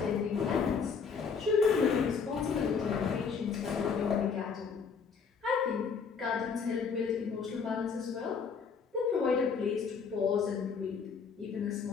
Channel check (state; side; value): quieter; right; 5.8 dB